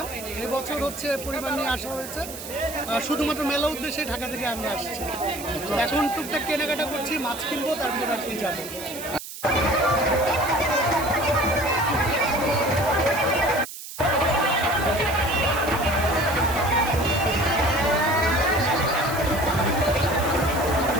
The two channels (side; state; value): right; noise; hiss, 11 dB below the sound